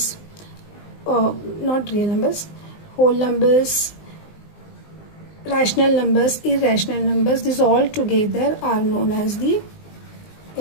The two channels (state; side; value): late; right; 19 ms